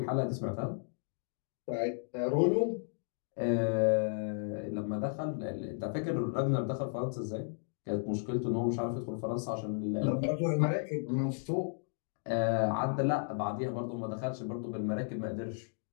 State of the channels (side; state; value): right; silent; digital silence